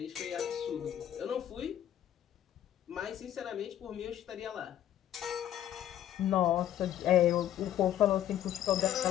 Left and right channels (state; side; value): quieter; right; 11.4 dB